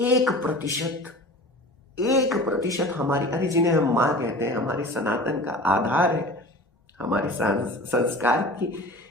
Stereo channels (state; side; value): normal; both; correlation 0.39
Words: 1% हमारी, अरे जिन्हें हम माँ कहते हैं, हमारे सनातन का आधार है, हमारे संस्कार की